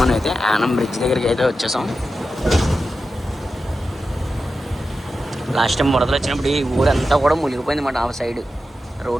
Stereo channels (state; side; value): normal; both; correlation 0.91